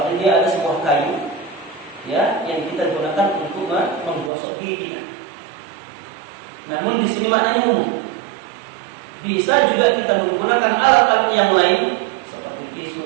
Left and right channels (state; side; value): drops out; left; at 4.3 s